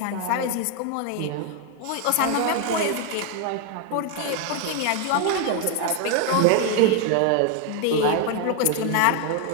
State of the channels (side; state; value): both; different; correlation 0.01